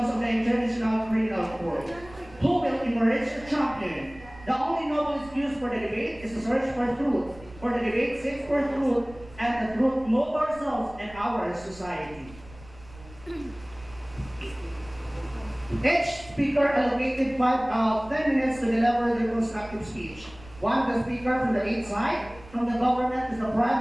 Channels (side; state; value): right; noise; rumble, 20 dB below the sound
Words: of the International Criminal Court. Who will emerge a champion? The only noble excuse for the debate is to search for truth. For the debate seeks for truth, and the truth move ourselves and our society. Each speaker allocated 10 minutes to deliver their constructive speech. One of the speaker from the eighth side, from the government is the